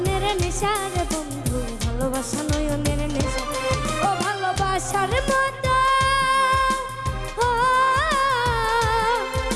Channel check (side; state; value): both; identical; correlation 1.00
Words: নেশা রে বন্ধু ভালোবাসা নয়নের নেশা ও ভালোবাসার মতো ও